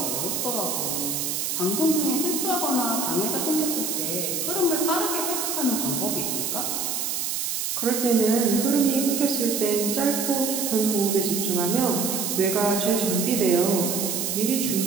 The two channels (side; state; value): right; noise; hiss, 1 dB below the sound